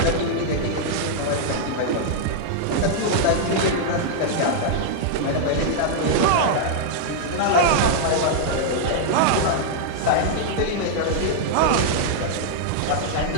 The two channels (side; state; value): both; different; correlation -0.01